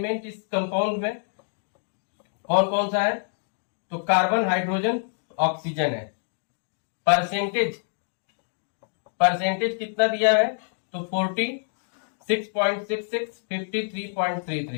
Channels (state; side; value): silent; right; digital silence